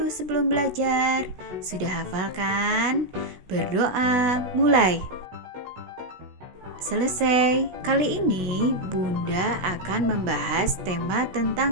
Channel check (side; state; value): left; late; 16 ms